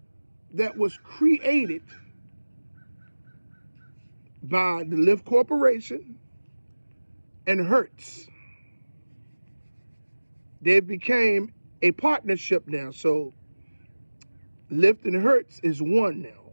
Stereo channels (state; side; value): inverted; both; correlation -1.00